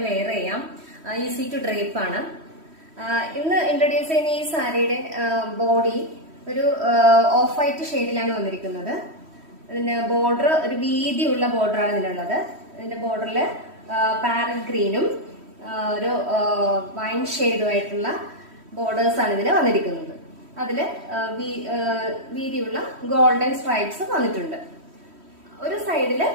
വെയർ ചെയ്യാം, ഈസി ടു ഡ്രേപ്പ് ആണ്. ഇന്ന് ഇൻട്രൊഡ്യൂസ് ചെയ്യുന്ന ഈ സാരിയുടെ ബോഡി ഒരു ഓഫ് വൈറ്റ് ഷെയ്ഡിലാണ് വന്നിരിക്കുന്നത്. ഇതിന്റെ ബോർഡർ ഒരു വീതിയുള്ള ബോർഡറാണ് ഇതിനുള്ളത്. ഇതിന്റെ ബോർഡറിൽ പാരറ്റ് ഗ്രീനും ഒരു വൈൻ ഷെയ്ഡുമായിട്ടുള്ള ബോർഡേഴ്സ് ആണ് ഇതിന് വന്നിരിക്കുന്നത്. അതില് വീതിയുള്ള ഗോൾഡൻ സ്ട്രൈപ്സ് വന്നിട്ടുണ്ട്. ഒരു സൈഡില്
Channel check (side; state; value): left; late; 3.1 ms